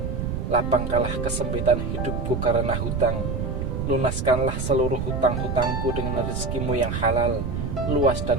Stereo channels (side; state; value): right; noise; rumble, 2 dB below the sound